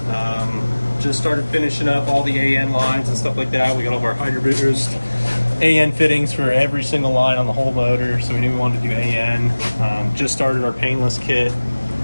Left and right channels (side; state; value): both; inverted; correlation -1.00